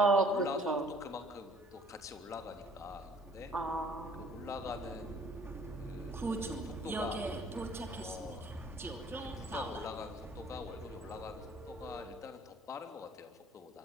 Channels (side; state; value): both; normal; correlation 0.56